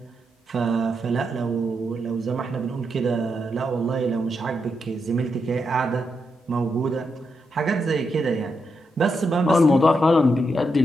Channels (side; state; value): both; normal; correlation 0.83